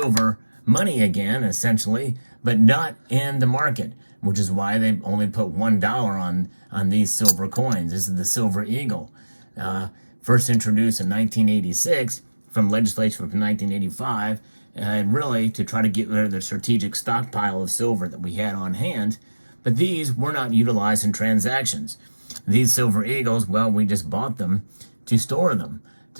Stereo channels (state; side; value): inverted; both; correlation -1.00